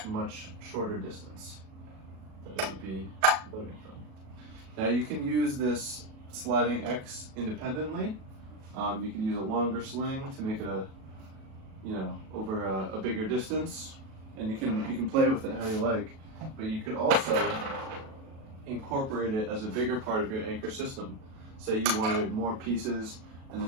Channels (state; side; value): late; left; 37 ms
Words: a much shorter distance that it would be loading from. Now you can use this sliding X independently. You can use a longer sling to make it over a bigger distance, and you can play with it how you like, but you could also incorporate it as a bigger part of your anchor system. Say you wanted more pieces and